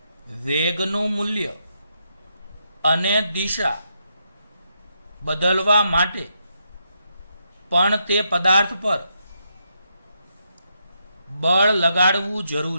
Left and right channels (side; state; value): both; inverted; correlation -0.80